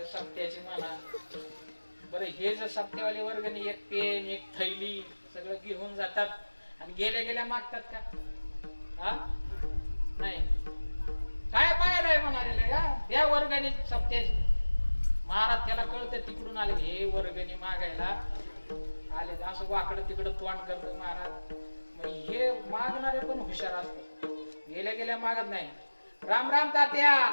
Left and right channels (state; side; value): inverted; both; correlation -1.00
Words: सप्त्याची म्हणा. बरं हे जर सप्त्यावाली वर्गणी एक पेन एक थैली सगळं घेऊन जातात आणि गेल्या गेल्या मागतात का? हा नाही. काय पाहायला म्हणाले का त्या वर्गणी सप्त्याची? महाराज त्याला कळतं तिकडून आले हे वर्गणी मागायला आले, असं वाकडं तिकडं तोंड करतो महाराज. मग हे मागणारे पण हुशार असतात, गेल्या गेल्या मागत नाही. राम राम तात्या,